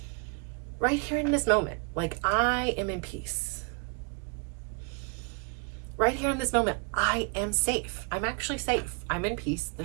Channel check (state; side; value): quieter; left; 35.1 dB